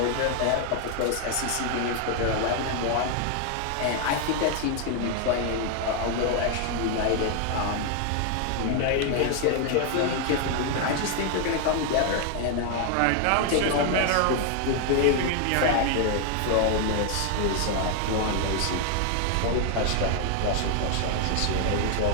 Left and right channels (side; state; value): both; different; correlation 0.00